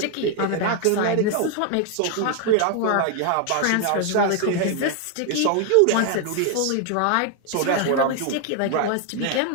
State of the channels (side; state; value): both; different; correlation 0.00